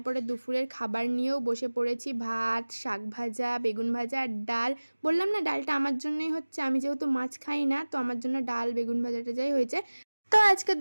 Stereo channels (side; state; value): both; inverted; correlation -1.00